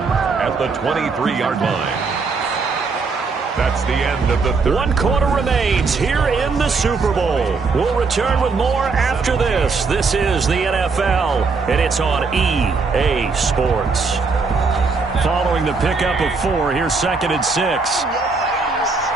the 23-yard line. That's the end of the third. 1 quarter remains here in the Super Bowl. We'll return with more after this. This is the NFL, and it's on EA Sports. Following the pickup of 4, here's 2nd and 6.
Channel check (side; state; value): left; quieter; 4.5 dB